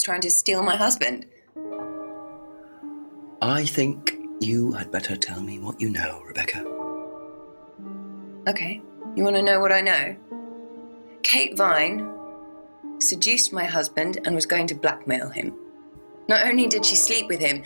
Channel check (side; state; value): both; inverted; correlation -1.00